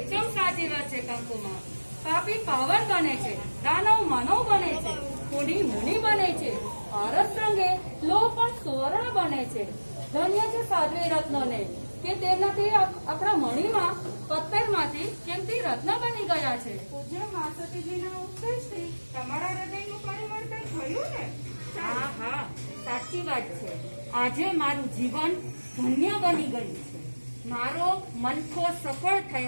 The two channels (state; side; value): inverted; both; correlation -1.00